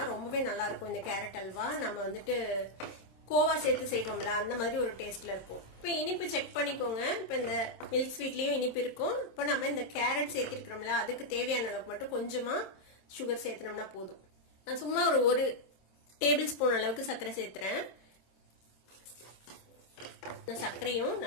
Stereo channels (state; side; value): late; right; 26 ms